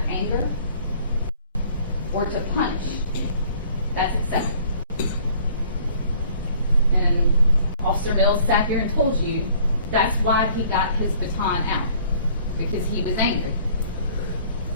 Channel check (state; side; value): inverted; both; correlation -0.55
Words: anger or to punish, that's acceptable. And Officer Mills sat here and told you that's why he got his baton out, because he was angry.